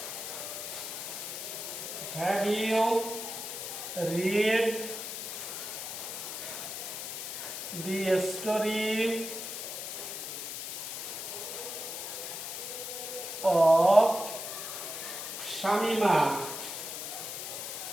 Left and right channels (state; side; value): noise; left; hiss, 6 dB below the sound